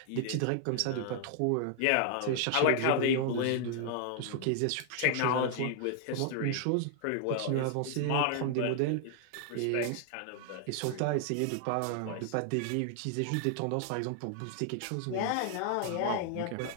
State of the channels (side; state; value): both; different; correlation 0.00